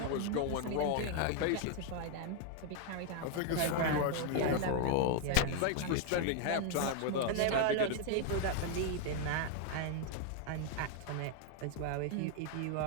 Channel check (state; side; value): different; both; correlation 0.00